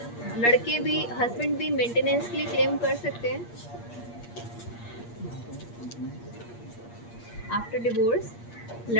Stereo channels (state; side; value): late; right; 8.5 ms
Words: लड़के भी, husband भी maintenance के लिए claim कर सकते हैं आफ्टर डिवोर्स?